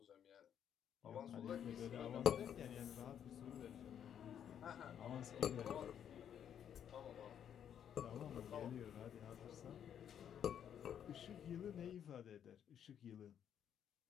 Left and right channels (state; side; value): quieter; right; 9.1 dB